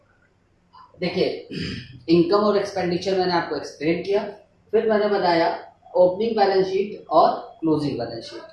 देखिए, इनकम और एक्सपेंडिचर मैंने आपको एक्सप्लेन किया, फिर मैंने बताया ओपनिंग बैलेंस शीट और क्लोजिंग बैलेंस शीट।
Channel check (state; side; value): identical; both; correlation 1.00